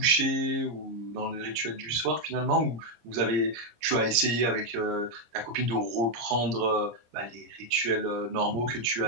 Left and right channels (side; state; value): left; late; 26 ms